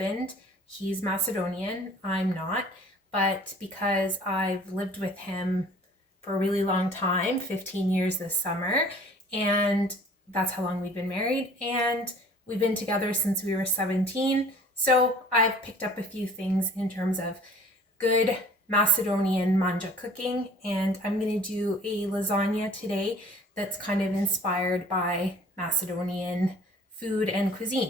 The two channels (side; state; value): both; normal; correlation 0.49